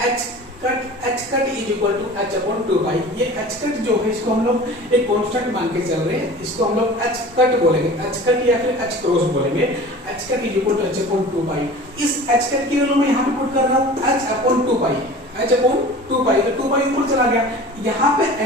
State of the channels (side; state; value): both; normal; correlation 0.40